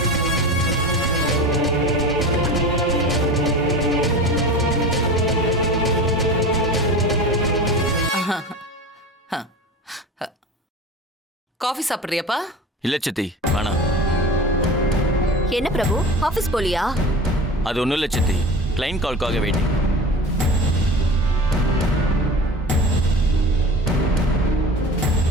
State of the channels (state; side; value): normal; both; correlation 0.33